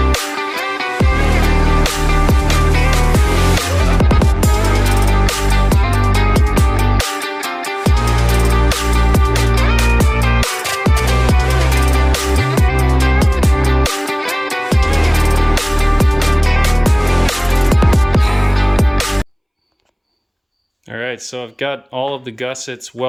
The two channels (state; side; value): identical; both; correlation 1.00